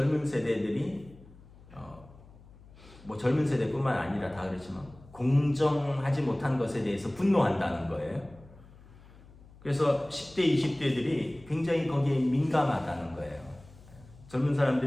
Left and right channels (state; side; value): noise; left; hum, 22 dB below the sound